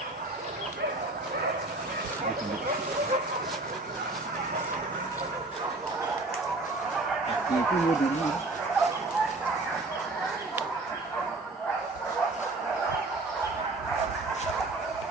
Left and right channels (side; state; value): left; quieter; 3.1 dB